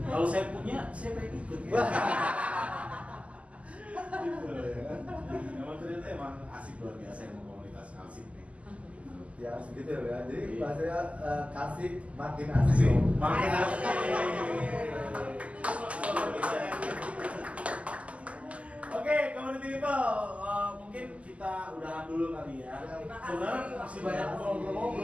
Kalau saya punya, saya pengen ikut. Ya. Gitu ya. Emang ternyata emang asik luar biasa yang komunitas Kalsik nih. Gitu. Ya segitu ya. Jadi bahasanya Kalsik makin asik. Makin asik. Oke, community people, mungkin kita udahan dulu kali ya. Terima kasih. Sebenarnya masih banyak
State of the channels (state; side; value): late; left; 0.065 ms